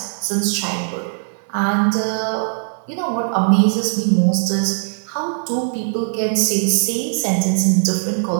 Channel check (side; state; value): left; silent; digital silence